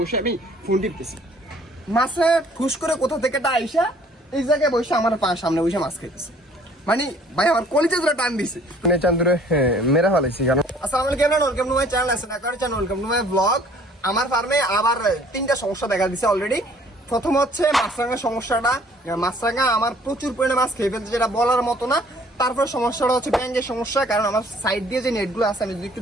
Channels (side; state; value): both; normal; correlation 0.56